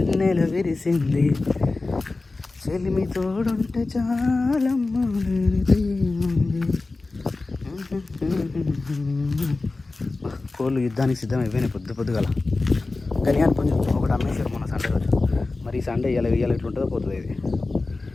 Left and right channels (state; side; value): quieter; right; 3.4 dB